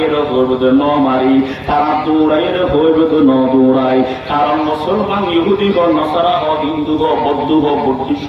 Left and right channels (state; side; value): identical; both; correlation 1.00